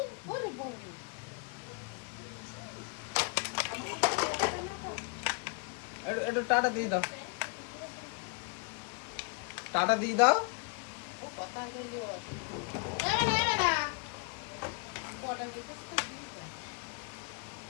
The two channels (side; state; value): right; quieter; 35.0 dB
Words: ওরে বাবা। একটু একটু টাটা দিয়ে দাও, টাটা দিয়ে দাও। ও কথা বললি ওরা। এবার না। কটা গেছে?